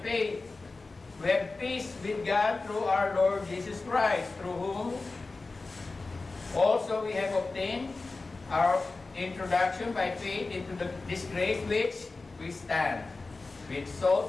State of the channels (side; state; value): right; quieter; 3.6 dB